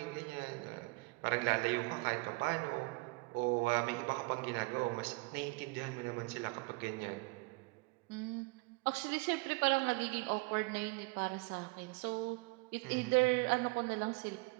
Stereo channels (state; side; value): quieter; left; 27.4 dB